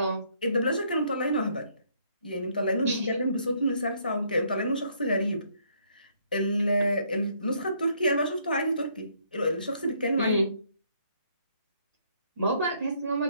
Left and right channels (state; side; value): inverted; both; correlation -0.68